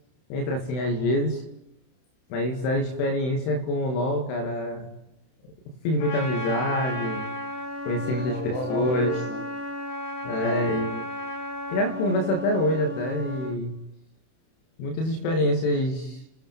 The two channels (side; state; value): right; late; 31 ms